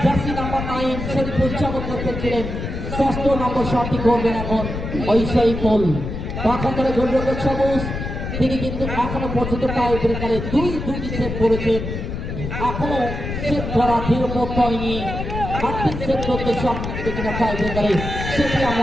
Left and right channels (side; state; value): left; noise; rumble, 5 dB below the sound